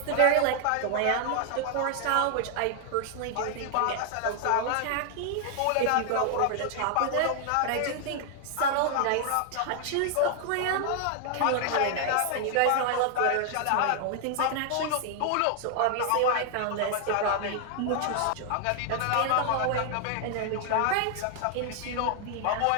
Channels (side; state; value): both; different; correlation 0.00